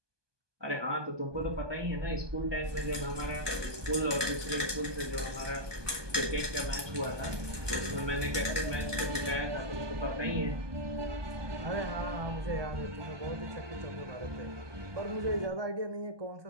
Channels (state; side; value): late; left; 1.2 ms